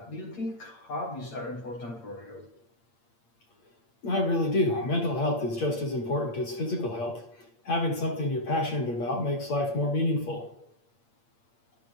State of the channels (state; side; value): late; right; 8.6 ms